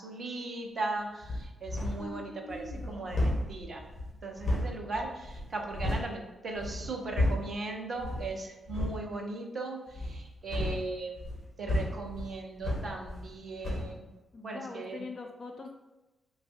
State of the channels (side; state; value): both; normal; correlation 0.80